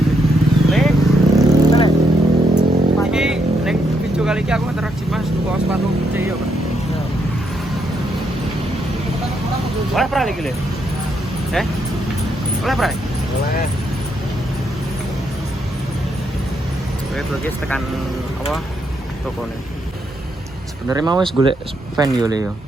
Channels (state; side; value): normal; both; correlation 0.78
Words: Iki neng video kali ini aku interaksi Mas tuku sepatu putih ya, Pak. Oleh pernah lagi le? Oleh pernah? Oleh. Oke, tekan apa? Toko nih. Sebenarnya mau wis golek fan yo le yo,